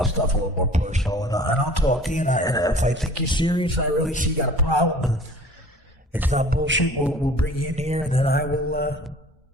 stuff a little more personal, and I'll talk to you, and if I think you're serious, I really see you got a problem, and it's not bullshit, we'll bring you in here, and then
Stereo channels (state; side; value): normal; both; correlation 0.46